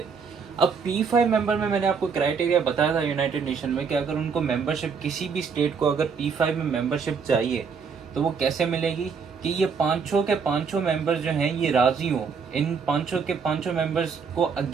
अब P5 मेंबर में मैंने आपको क्राइटेरिया बताया था यूनाइटेड नेशन में कि अगर उनको मेंबरशिप, किसी भी स्टेट को अगर P5 में मेंबरशिप चाहिए तो वो कैसे मिलेगी कि ये पांचों के पांचों मेंबर्स जो हैं ये राजी हों, इन पांचों के पांचों मेंबर्स को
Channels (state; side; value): quieter; left; 5.8 dB